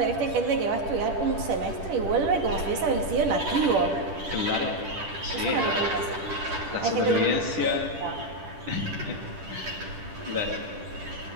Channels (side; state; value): left; late; 10 ms